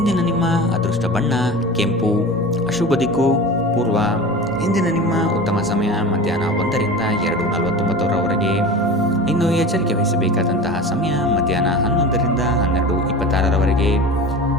ನಿಮ್ಮ ಅದೃಷ್ಟ ಬಣ್ಣ ಕೆಂಪು. ಅಶುಭ ದಿಕ್ಕು ಪೂರ್ವ. ಇಂದಿನ ನಿಮ್ಮ ಉತ್ತಮ ಸಮಯ ಮಧ್ಯಾಹ್ನ 1ರಿಂದ 2:49ರವರೆಗೆ. ಇನ್ನು ಎಚ್ಚರಿಕೆ ವಹಿಸಬೇಕಾದಂತಹ ಸಮಯ ಮಧ್ಯಾಹ್ನ 11ರಿಂದ 12:26ರವರೆಗೆ.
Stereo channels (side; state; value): both; normal; correlation 0.33